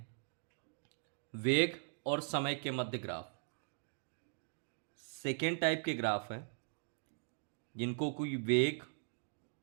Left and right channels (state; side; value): silent; left; digital silence